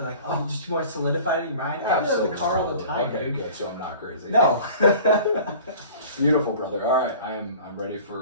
like, just more solidified in your mind. I do it in the car all the time, okay, dude. Good. So I'm not crazy. No. Beautiful, brother. All right, I'm ready for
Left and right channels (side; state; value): both; inverted; correlation -0.44